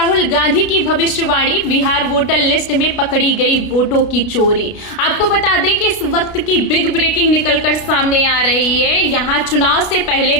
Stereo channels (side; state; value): right; late; 33 ms